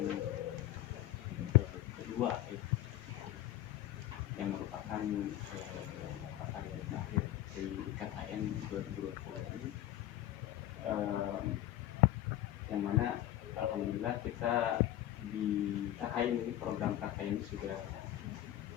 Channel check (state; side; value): quieter; right; 13.6 dB